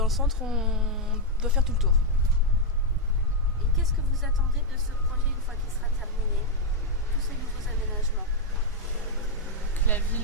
le centre, on doit faire tout le tour. Et qu'est-ce que vous attendez de ce projet une fois qu'il sera terminé? Tous ces nouveaux aménagements. Que la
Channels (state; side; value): normal; both; correlation 0.01